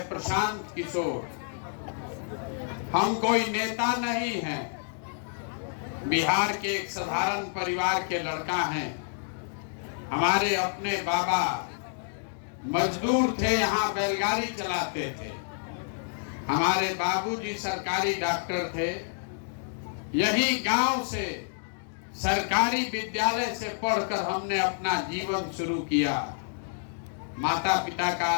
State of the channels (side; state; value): right; silent; digital silence